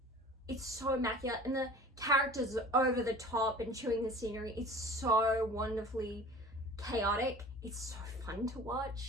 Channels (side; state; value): both; normal; correlation 0.43